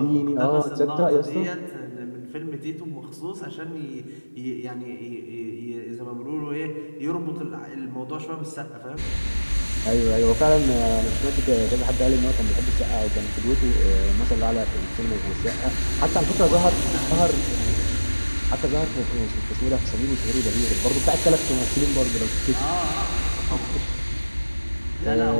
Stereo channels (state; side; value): inverted; both; correlation -1.00